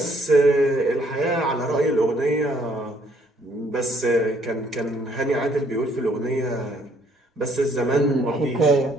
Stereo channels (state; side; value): normal; both; correlation 0.65